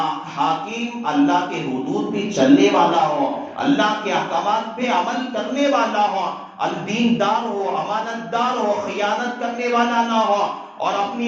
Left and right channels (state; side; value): identical; both; correlation 1.00